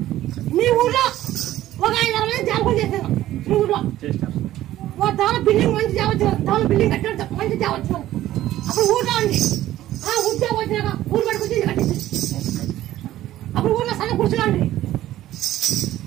మీ ఊర్లో ఒక 5-6 మంది జాబులు చేశాను మీ ఊర్లో దాని బిల్డింగ్ మంచి తేవచ్చు దాని బిల్డింగ్ కట్టాడు మంచి తేవచ్చు అప్పుడు ఊర్లో ఉంది ఆ ఉద్యోగం వచ్చినాక ఊరు పడి కూర్చొని కట్టింది అప్పుడు ఊర్లో సన్న కూర్చున్నాండి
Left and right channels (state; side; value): quieter; left; 14.0 dB